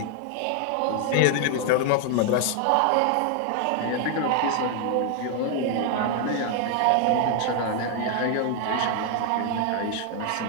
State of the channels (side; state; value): both; different; correlation 0.00